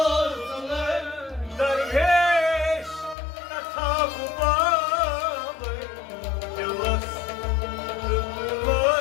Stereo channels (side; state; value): right; drops out; at 3.2 s